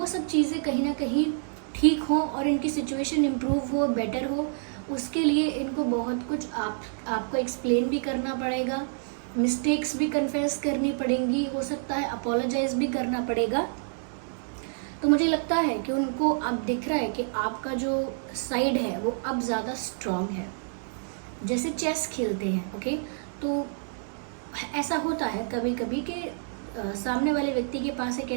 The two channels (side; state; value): left; silent; digital silence